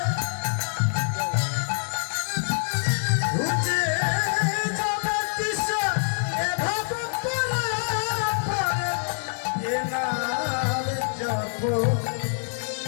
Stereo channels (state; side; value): silent; right; 61 dB below the other